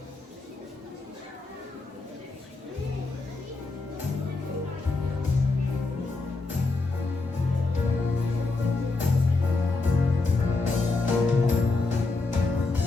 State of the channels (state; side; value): quieter; right; 3.6 dB